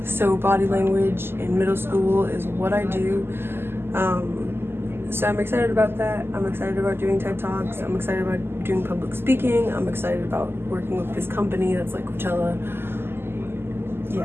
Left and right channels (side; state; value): left; late; 0.11 ms